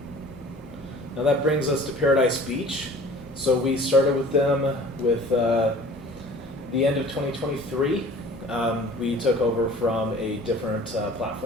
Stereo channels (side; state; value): both; normal; correlation 0.46